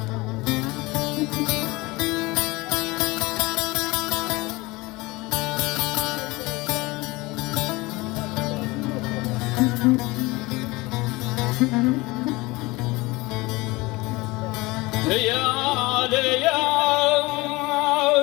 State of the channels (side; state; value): right; quieter; 22.5 dB